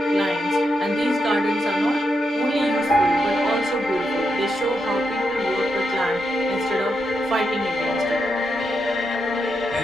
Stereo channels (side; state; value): both; normal; correlation 0.83